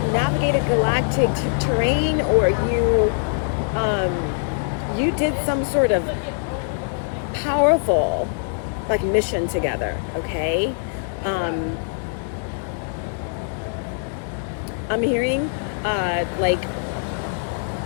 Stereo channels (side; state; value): right; silent; digital silence